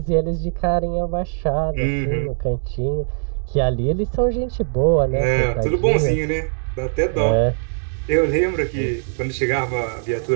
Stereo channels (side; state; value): left; silent; digital silence